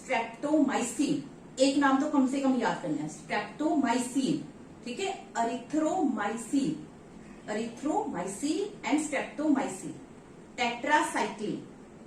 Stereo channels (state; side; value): identical; both; correlation 1.00